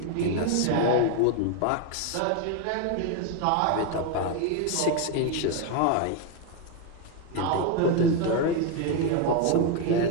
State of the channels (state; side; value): different; both; correlation 0.02